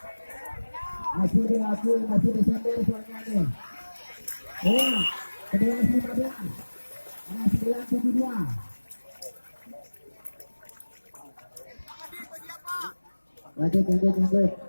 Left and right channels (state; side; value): inverted; both; correlation -1.00